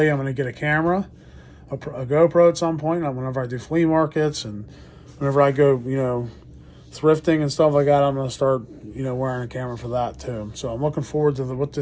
I'm going to get a camera, a GoPro at some point, whenever I do flea markets, and whenever I go, thrifting and stuff like that. I'm going to start, wearing a camera for that too. So I'm looking forward to what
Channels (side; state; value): both; identical; correlation 1.00